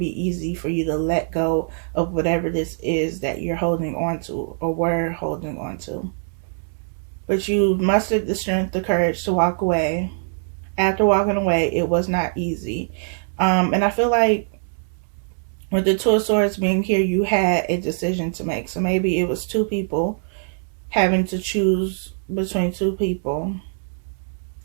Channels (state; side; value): silent; left; digital silence